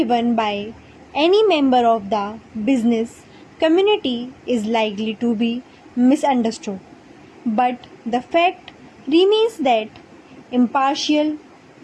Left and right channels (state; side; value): identical; both; correlation 1.00